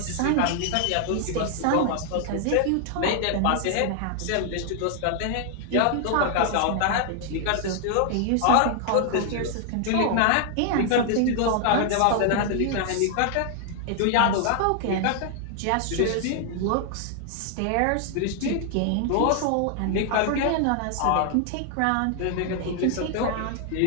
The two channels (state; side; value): different; both; correlation 0.00